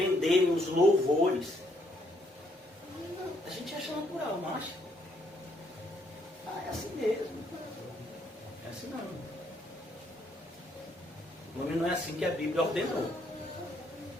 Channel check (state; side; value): normal; both; correlation 0.71